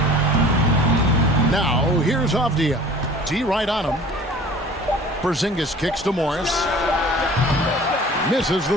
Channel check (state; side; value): normal; both; correlation 0.46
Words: Now, here's Avdia. T right on him. Porzingis kicks to Morris. Misses